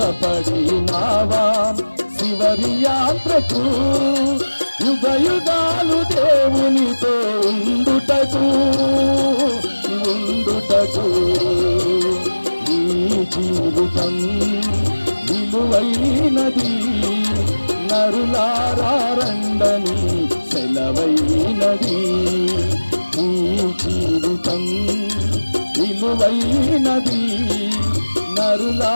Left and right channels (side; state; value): both; inverted; correlation -1.00